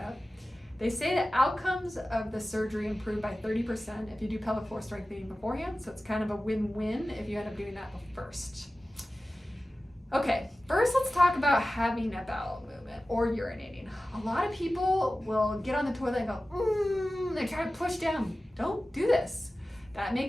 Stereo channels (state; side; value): normal; both; correlation 0.95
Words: They say that outcomes of the surgery improve by 30% if you do pelvic floor strengthening beforehand, so it's kind of a win-win if you end up doing that first. Okay, first let's talk about having a bowel movement or urinating. A lot of people will get on the toilet and go, they try to push down. Don't do this. That